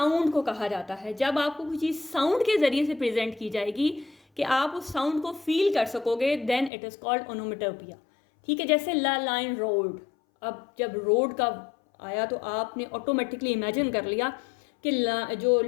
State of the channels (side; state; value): right; drops out; at 6.7 s